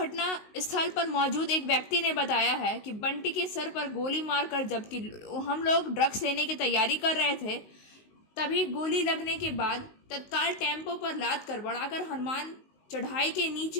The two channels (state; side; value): late; right; 19 ms